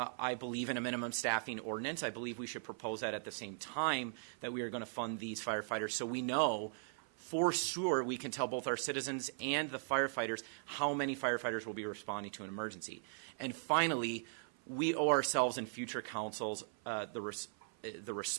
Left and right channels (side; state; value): left; silent; 52 dB below the other